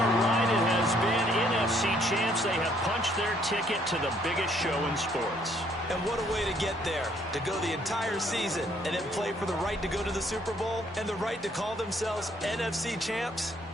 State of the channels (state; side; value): normal; both; correlation 0.66